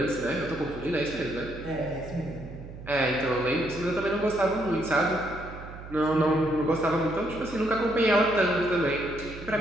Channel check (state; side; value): noise; right; hum, 13 dB below the sound